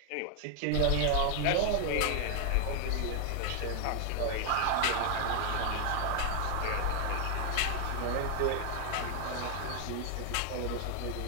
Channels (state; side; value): different; both; correlation 0.00